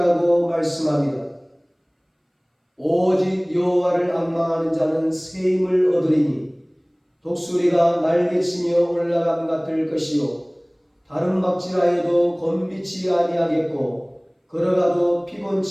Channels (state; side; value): identical; both; correlation 1.00